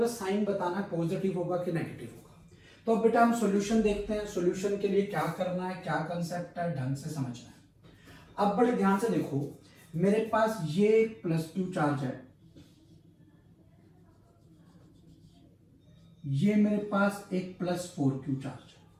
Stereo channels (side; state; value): both; identical; correlation 1.00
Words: है साइन बताना, पॉजिटिव होगा कि नेगेटिव होगा। तो अब बेटा हम सॉल्यूशन देखते हैं, सॉल्यूशन के लिए क्या करना है, क्या कंसेप्ट है, ढंग से समझना है। अब बड़े ध्यान से देखो, मेरे पास ये +2 चार्ज है, ये मेरे पास एक +4q चार्ज है,